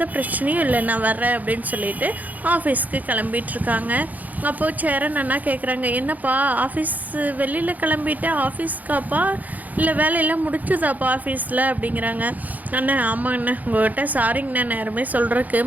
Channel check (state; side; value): late; left; 0.080 ms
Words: பிரச்சனையும் இல்லை, நான் வர்றேன் அப்படின்னு சொல்லிட்டு ஆஃபீஸ்க்கு கிளம்பிகிட்ருக்காங்க. அப்போது சேரன் அண்ணா கேட்குறாங்க, என்னப்பா ஆஃபீஸ் வெளியில் கிளம்பிட்டு ஆஃபீஸ்க்காப்பா இல்லை வேலையெல்லாம் முடிச்சுதாப்பா ஆஃபீஸில் அப்படிங்கிறாங்க. அண்ணா ஆமாங்கண்ணா, உங்கள்கிட்ட சாரிங்கண்ணா, நேரமே சொல்கிறதுக்கு